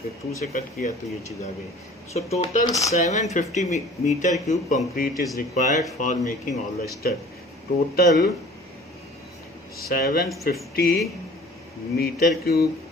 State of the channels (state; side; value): normal; both; correlation 0.47